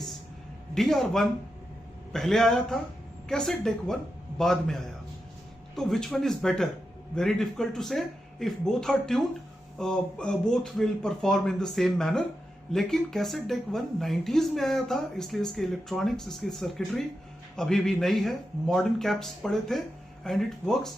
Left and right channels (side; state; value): both; normal; correlation 0.88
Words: DR1 पहले आया था, कैसेट डेक 1 बाद में आया। तो which one is better? Very difficult to say. If both are tuned both will perform in the same manner. लेकिन कैसेट डेक 1 90s में आया था, इसलिए इसके इलेक्ट्रॉनिक्स, इसकी सर्किटरी अभी भी नई है, मॉडर्न कैप्स पड़े थे and it works